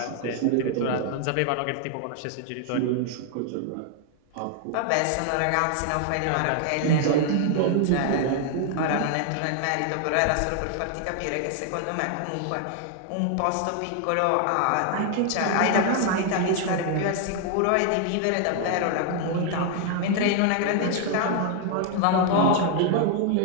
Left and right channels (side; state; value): both; different; correlation 0.00